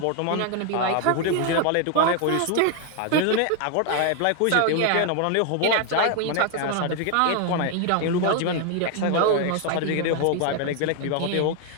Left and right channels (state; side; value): different; both; correlation 0.00